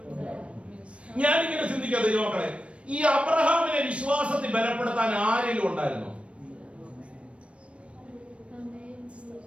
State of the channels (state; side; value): late; left; 0.061 ms